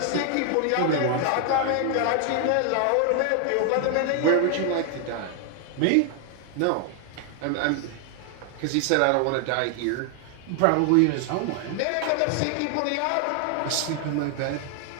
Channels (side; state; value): both; different; correlation 0.00